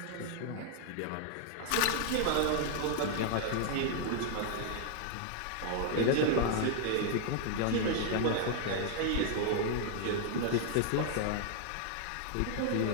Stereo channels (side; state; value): both; different; correlation 0.00